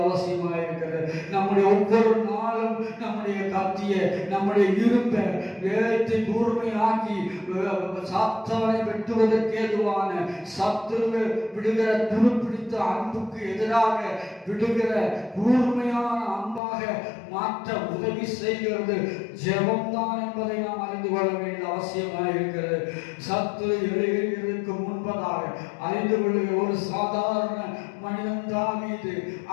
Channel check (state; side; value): drops out; right; at 16.6 s